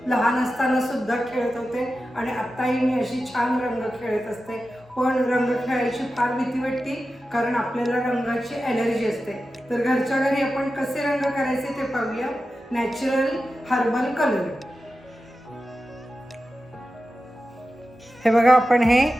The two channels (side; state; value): both; normal; correlation 0.92